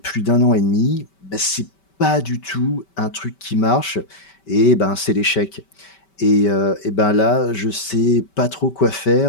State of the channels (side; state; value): right; late; 5.2 ms